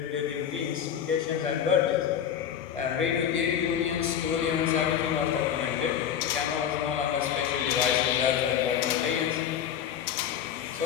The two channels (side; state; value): right; quieter; 9.1 dB